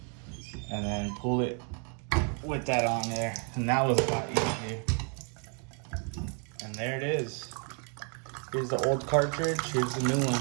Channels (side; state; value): left; quieter; 39.6 dB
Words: and then pull it with that on there. And that was a lot easier. And there it is. Here's the old cartridge, here's the new